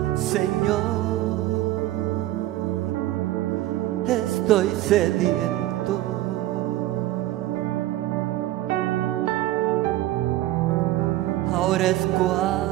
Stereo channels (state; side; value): quieter; left; 15.3 dB